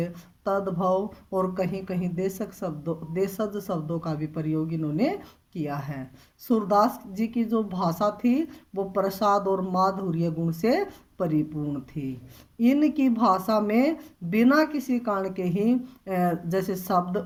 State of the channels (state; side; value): identical; both; correlation 1.00